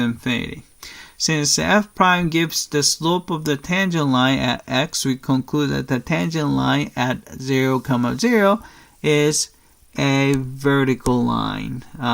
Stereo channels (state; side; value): identical; both; correlation 1.00